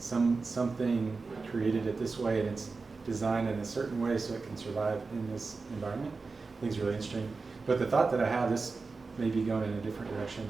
created it this way, and it's designed in a certain way so it can survive in this environment. I think it's really interesting. But the thought that I have, this may be going in a different direction,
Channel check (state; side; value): quieter; left; 4.2 dB